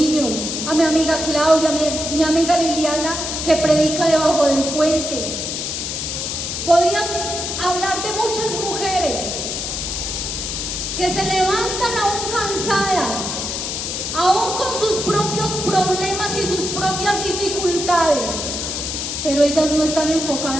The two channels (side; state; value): left; noise; hiss, 3 dB below the sound